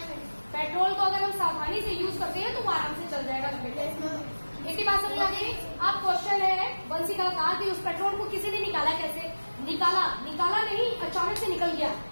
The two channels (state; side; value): inverted; both; correlation -1.00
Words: पेट्रोल को अगर हम सावधानी से यूज करते हैं तो वो आराम से चल जाएगा। इसी बात समझ आ गई। आप क्वेश्चन है बंसी का कहा कि उस पेट्रोल को किसी ने निकाला, कैसे निकाला? निकाला नहीं, अचानक से निकल गया,